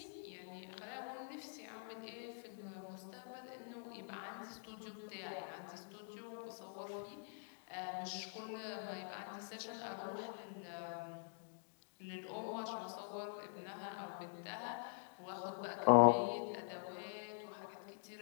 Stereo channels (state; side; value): silent; right; digital silence